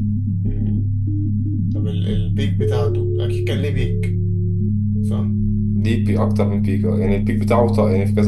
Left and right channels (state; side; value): identical; both; correlation 1.00